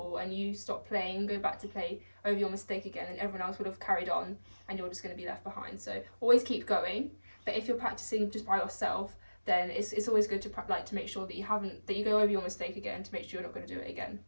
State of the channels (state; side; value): inverted; both; correlation -1.00